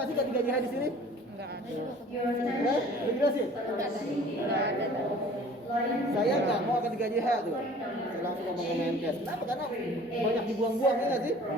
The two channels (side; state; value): both; normal; correlation 0.48